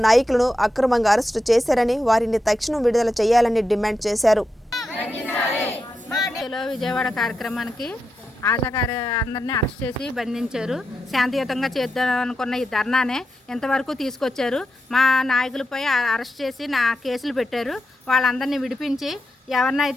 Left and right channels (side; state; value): both; normal; correlation 0.88